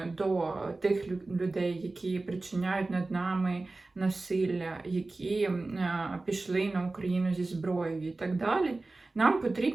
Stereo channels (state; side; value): quieter; left; 3.3 dB